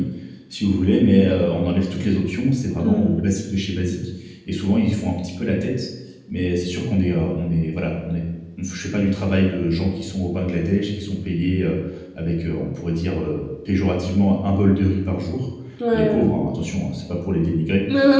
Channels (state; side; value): identical; both; correlation 1.00